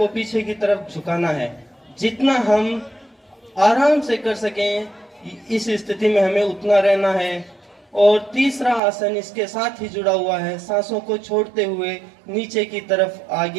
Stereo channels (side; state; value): left; drops out; at 8.8 s